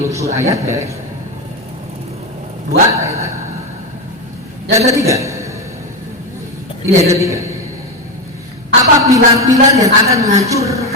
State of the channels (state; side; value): noise; left; hum, 30 dB below the sound